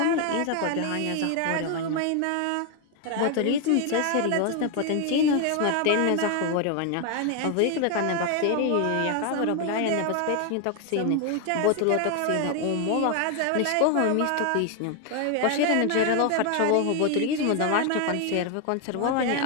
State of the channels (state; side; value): different; both; correlation 0.01